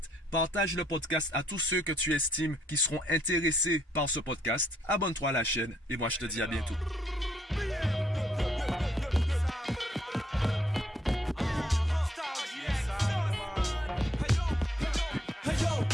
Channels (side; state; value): both; normal; correlation 0.70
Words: Partage le podcast à tous ceux que tu estimes qui seront intéressés par ce podcast. Abonne-toi à la chaîne et moi, je te dis à bientôt.